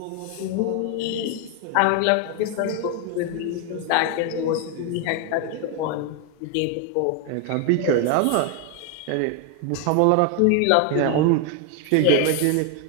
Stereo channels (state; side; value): different; both; correlation 0.01